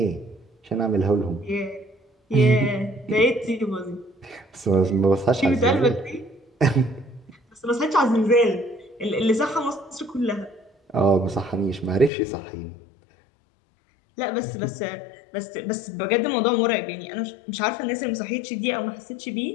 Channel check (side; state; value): right; drops out; at 12.1 s